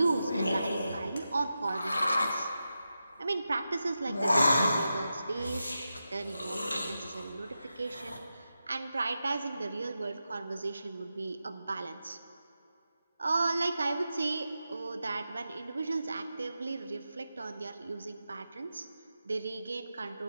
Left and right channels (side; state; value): both; inverted; correlation -0.90